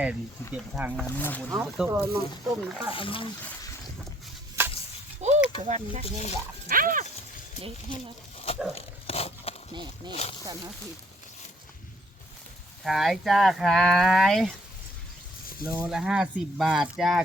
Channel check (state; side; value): normal; both; correlation 0.65